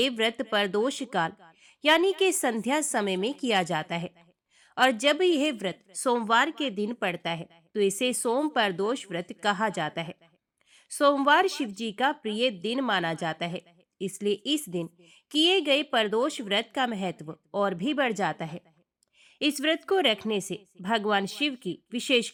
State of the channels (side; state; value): both; identical; correlation 1.00